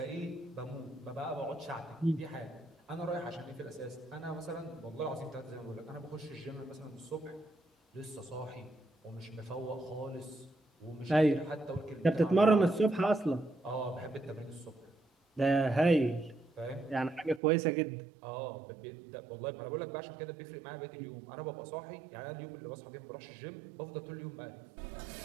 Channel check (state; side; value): drops out; left; at 17.4 s